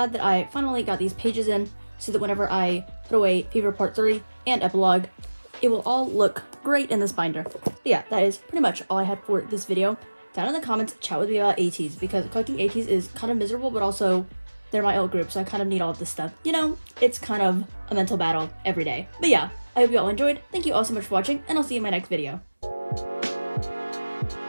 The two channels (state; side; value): inverted; both; correlation -1.00